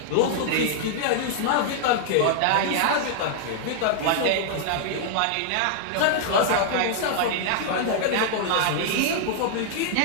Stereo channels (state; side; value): different; both; correlation -0.01